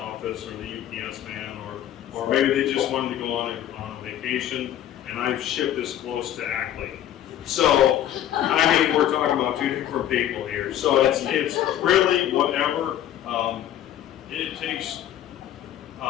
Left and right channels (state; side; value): quieter; right; 11.5 dB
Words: or the UPS man, or maybe they just wanted to go on a vacation. And I've shipped this close to Ackley. So, I mean, we're talking about two different people here. So it's really whatever it takes.